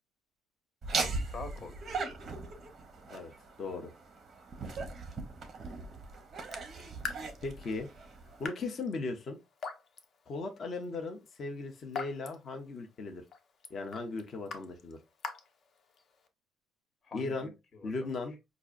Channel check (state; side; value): normal; both; correlation 0.65